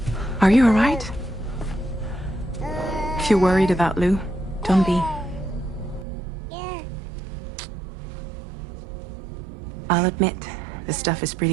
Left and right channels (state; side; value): drops out; left; at 6.1 s